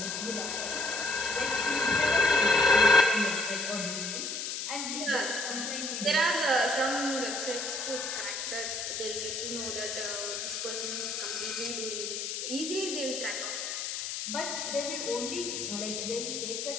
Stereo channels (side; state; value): left; noise; hiss, 4 dB below the sound